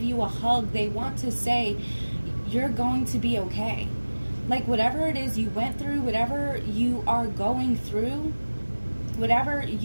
you a hug. They want to say, you're going to be okay. Like whatever it is you went through, whatever you are going through, whatever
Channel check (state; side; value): inverted; both; correlation -1.00